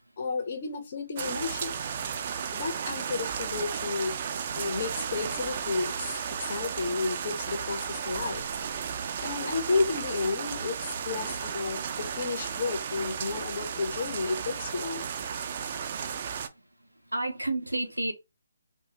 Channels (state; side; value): inverted; both; correlation -0.75